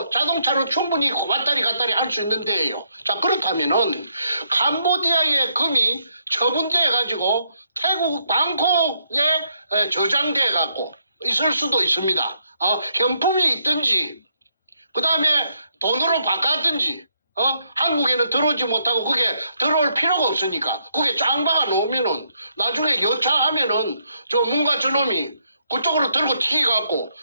자동차로 충분히 왔다리 갔다리 할 수 있는 데예요. 자, 그렇다면은 캄보디아의 금이 처분돼 가지고 태국 방콕에 저장돼 갖고 있을 수도 있습니다. 현품이 있든지 그 다음에 돈으로 바꿨든지 한국에는 들어오지 못하고 그게 들어올 필요가 없으니까 그게 짱 박아 놓으면은 나중에 여차하면은 저 뭔가 저놈이 그쪽으로 들고 튀겨갖고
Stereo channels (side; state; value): both; inverted; correlation -0.75